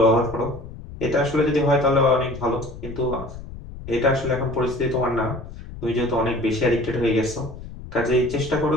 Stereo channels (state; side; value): noise; left; rumble, 13 dB below the sound